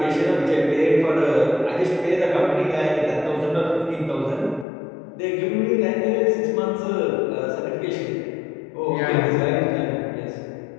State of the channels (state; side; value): drops out; right; at 4.7 s